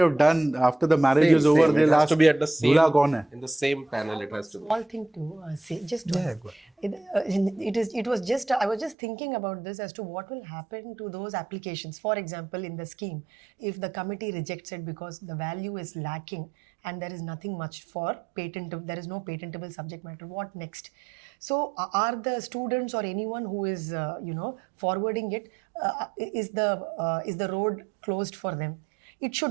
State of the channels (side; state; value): left; drops out; at 9.0 s